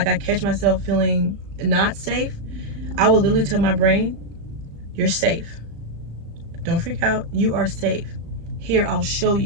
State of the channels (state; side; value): late; left; 35 ms